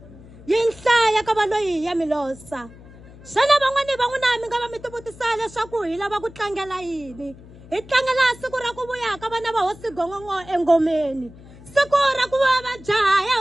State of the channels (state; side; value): noise; left; hum, 20 dB below the sound